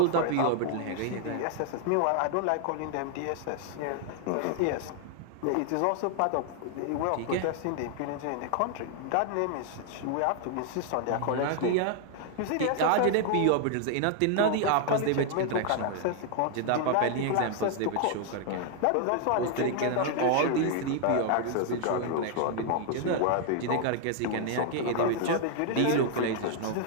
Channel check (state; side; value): different; both; correlation 0.00